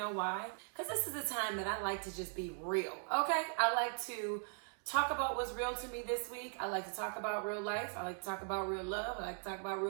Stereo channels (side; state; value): left; silent; 51 dB below the other